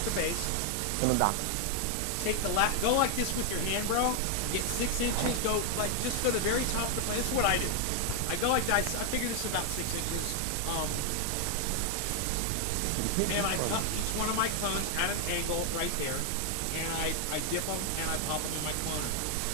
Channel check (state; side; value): different; both; correlation 0.00